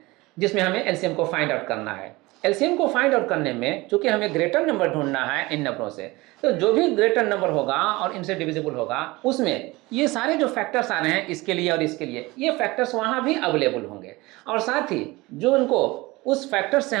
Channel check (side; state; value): left; quieter; 21.7 dB